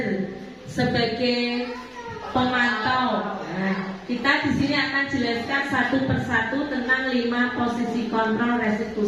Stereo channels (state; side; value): identical; both; correlation 1.00